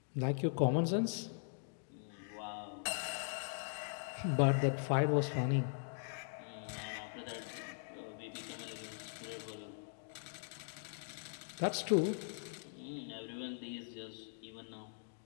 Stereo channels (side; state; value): right; silent; digital silence